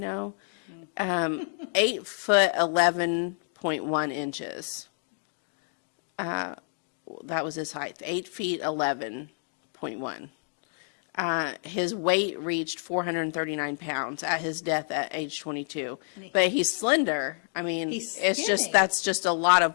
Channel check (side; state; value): right; silent; 57 dB below the other